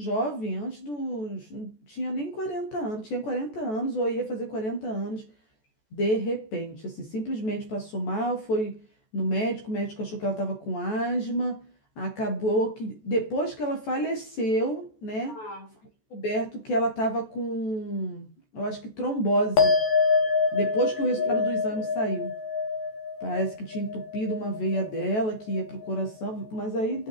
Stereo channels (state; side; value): late; right; 14 ms